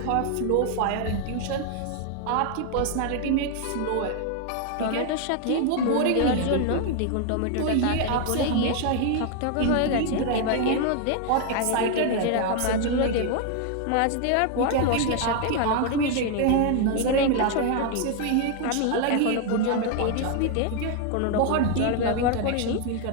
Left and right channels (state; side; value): different; both; correlation 0.00